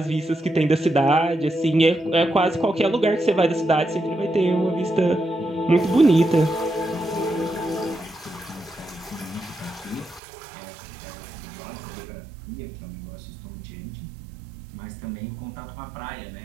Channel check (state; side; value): drops out; left; at 10.2 s